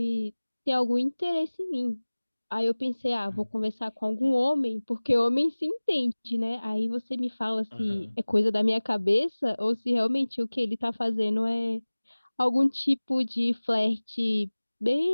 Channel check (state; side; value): inverted; both; correlation -1.00